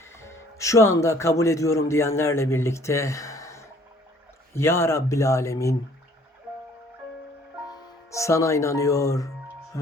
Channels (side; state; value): both; normal; correlation 0.58